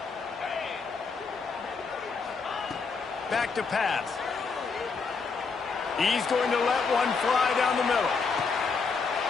Back to pass. He's going to let one fly down the middle.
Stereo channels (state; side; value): quieter; right; 4.9 dB